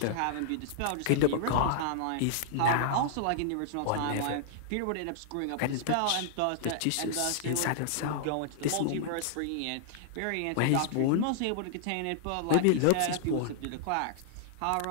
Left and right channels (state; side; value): different; both; correlation -0.01